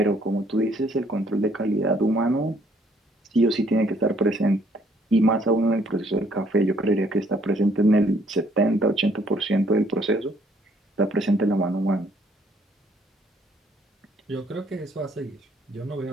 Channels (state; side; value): normal; both; correlation 0.65